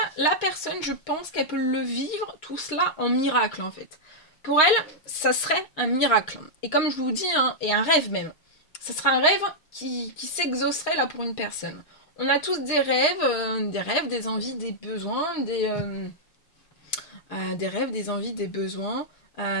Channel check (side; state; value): right; late; 6.4 ms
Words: la personne, je pense qu'elle peut le vivre, tout cela, en miracle, en fait. Pour elle, ça serait un miracle. Et comme je vous dis, hein, et un rêve même. Ça serait un rêve qui s'exaucerait là pour une personne. On a tous des rêves, des envies, des besoins, des rêves, des envies, des besoins,